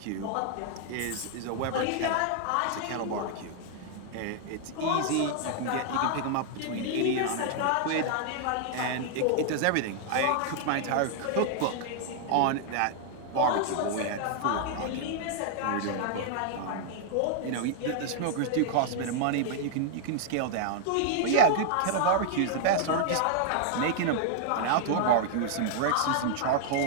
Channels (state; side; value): different; both; correlation -0.01